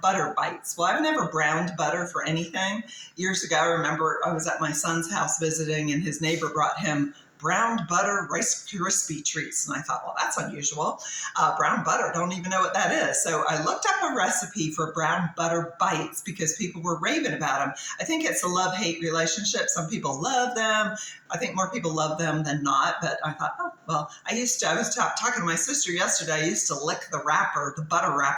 butter bites. Well, I've never browned butter for anything. Years ago, I remember I was at my son's house visiting, and his neighbor brought him browned butter Rice Krispie treats. And I thought, well, that's unusual. Brown butter, don't even know what that is. So I looked up a recipe for brown butter bites because people were raving about them. I think it's a love-hate relationship. Some people love them. I think more people love them than not. But I thought, oh, well, I was talking to my sister yesterday. I used to lick the butter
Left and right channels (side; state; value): both; identical; correlation 1.00